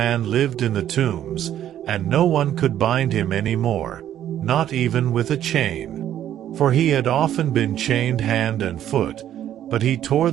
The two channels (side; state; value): left; quieter; 11.2 dB